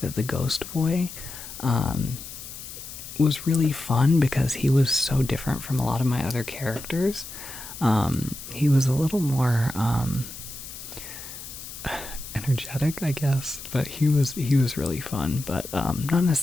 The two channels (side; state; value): left; noise; hiss, 12 dB below the sound